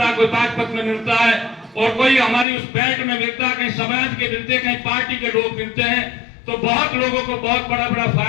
है, कोई बागपत में मिलता है और कोई हमारी उस बेल्ट में मिलता है, कहीं समाज के मिलते हैं, कहीं पार्टी के लोग मिलते हैं, तो बहुत लोगों को बहुत बड़ा बड़ा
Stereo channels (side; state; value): right; drops out; at 2.5 s